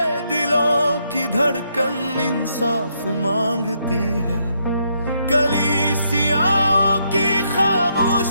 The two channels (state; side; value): inverted; both; correlation -0.76